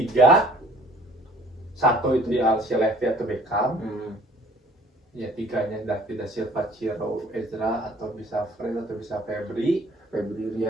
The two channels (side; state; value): both; normal; correlation 0.53